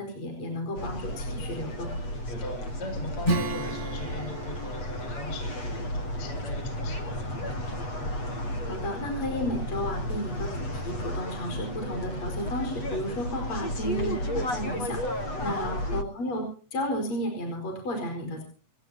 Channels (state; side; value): late; right; 8.2 ms